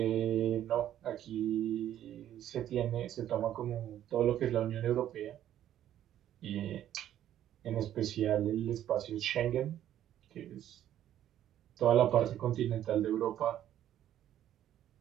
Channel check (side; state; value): left; quieter; 11.5 dB